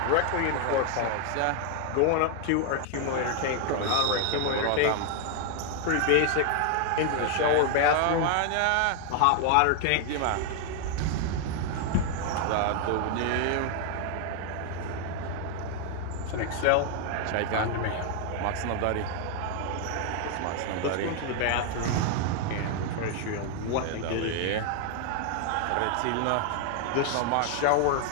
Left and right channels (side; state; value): both; different; correlation 0.00